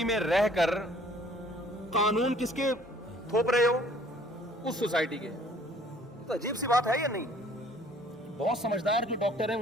میں رہ کر قانون کس کے تھوپ رہے ہو؟ اس سوسائٹی کے. تو عجیب سی بات ہے یا نہیں؟ بہت سمجھدار جو ڈاکٹر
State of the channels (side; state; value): both; normal; correlation 0.56